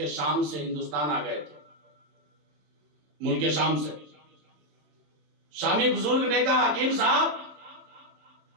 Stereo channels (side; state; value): left; late; 27 ms